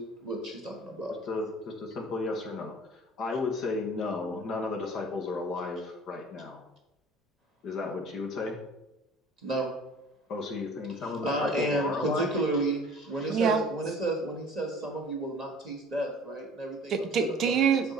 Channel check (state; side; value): normal; both; correlation 0.47